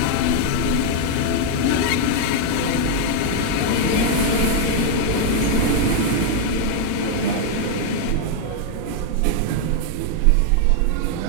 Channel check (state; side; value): different; both; correlation 0.00